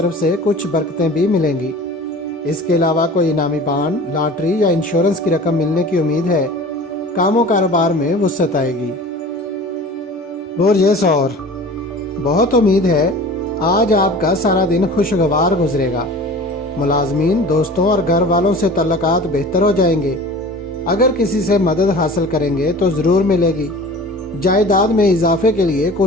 سے کچھ برکتیں بھی ملیں گی۔ اس کے علاوہ کوئی انعامی بانڈ، لاٹری یا انشورنس کی رقم ملنے کی امید ہے۔ کام و کاروبار میں وسعت آئے گی۔ برج ثور، بہت امید ہے آج آپ کا سارا دن خوشگوار گزرے گا۔ ملازمین، دوستوں اور گھر والوں سے تعلقات بہتر ہو جائیں گے۔ اگر کسی سے مدد حاصل کریں گے تو ضرور ملے گی۔ جائیداد میں اضافے کے لیے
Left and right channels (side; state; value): both; normal; correlation 0.40